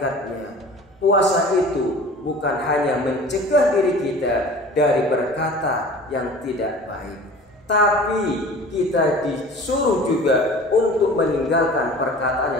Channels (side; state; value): both; normal; correlation 0.42